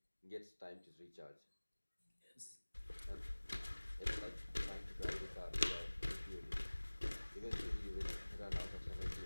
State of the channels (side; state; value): both; inverted; correlation -1.00